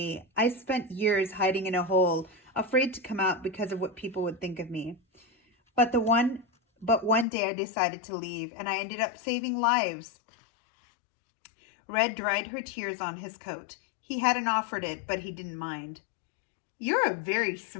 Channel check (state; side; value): drops out; right; at 7.2 s